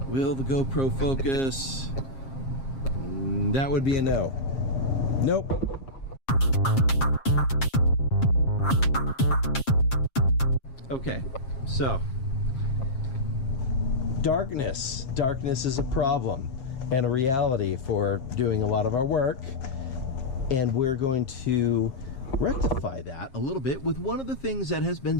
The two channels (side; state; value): right; late; 7.5 ms